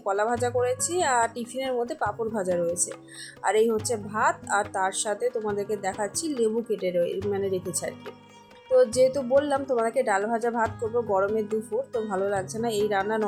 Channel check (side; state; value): both; identical; correlation 1.00